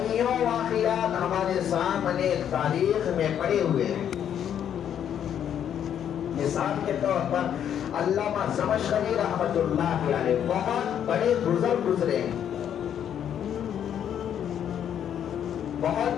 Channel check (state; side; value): quieter; right; 9.4 dB